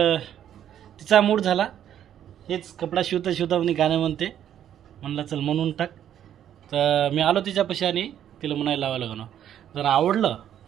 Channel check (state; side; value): quieter; left; 10.3 dB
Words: तिचा मूड झाला, हेच कपडा शिवता शिवता मी गाणं म्हणते, म्हणलं चल म्हणून टाक. तर मी आलो तिच्यापाशी आणि तिला म्हणायला लावायला लागलो, जर आवडलं